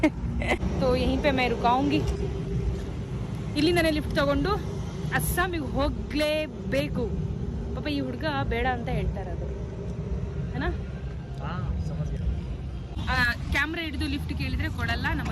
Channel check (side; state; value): both; identical; correlation 1.00